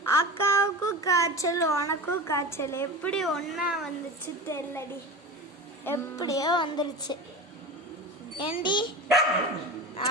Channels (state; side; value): normal; both; correlation 0.29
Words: அக்காவுக்கும் காய்ச்சல் உனக்கும் காய்ச்சல் எப்படி ஒன்னா வந்துச்சு தெரியலடி எப்படியோ வந்துருச்சு ஏண்டி